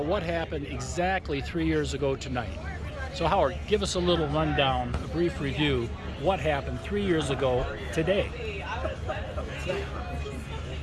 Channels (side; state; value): both; identical; correlation 1.00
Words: what happened exactly 3 years ago tonight. So Howard, give us a little rundown, a brief review, what happened 3 years ago today.